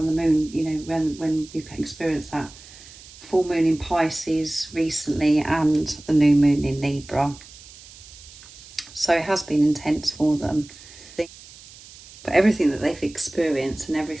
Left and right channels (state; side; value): noise; right; hiss, 20 dB below the sound